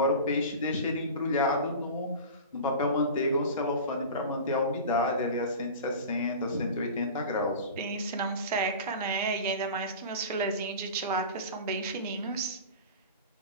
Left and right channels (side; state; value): both; inverted; correlation -0.33